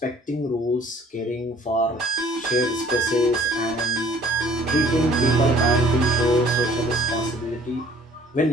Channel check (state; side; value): normal; both; correlation 0.55